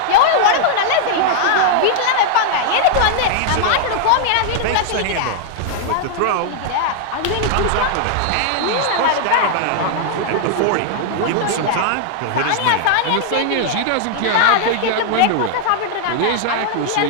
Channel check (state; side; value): different; both; correlation 0.00